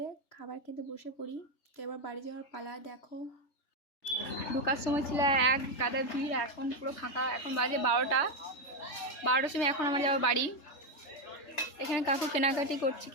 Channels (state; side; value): late; right; 3.3 ms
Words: খাবার খেতে বসে পড়ি। তো এবার বাড়ি যাওয়ার পালা। দেখো ঢোকার সময় ছিল এক গাদা ভিড়, এখন পুরো ফাঁকা। এখন বাজে 12টার সময় এখন আমার যাওয়া বাড়ি। এখানে কাকু কেনাকাটি করছে